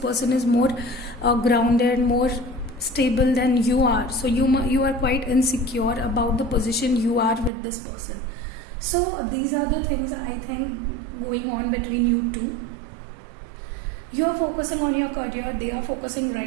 is more grounded, more stable than you are, so you are quite insecure about the position you are with this person. So these are the things I think going on between you two. You are focusing on your career, they are focusing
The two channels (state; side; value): drops out; left; at 7.5 s